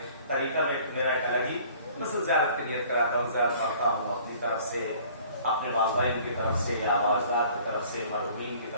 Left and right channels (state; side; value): inverted; both; correlation -0.52